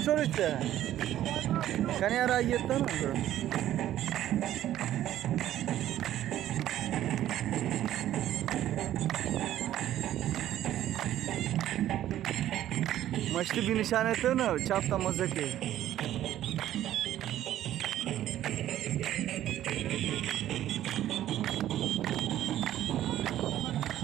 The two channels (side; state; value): left; quieter; 12.6 dB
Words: पे కానీ यार आई येतो ना मछली भी निशान येतो ना चापता मजा के